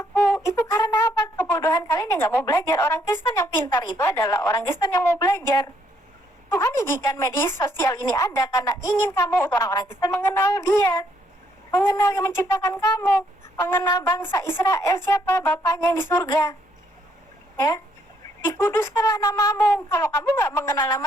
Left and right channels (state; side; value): normal; both; correlation 0.71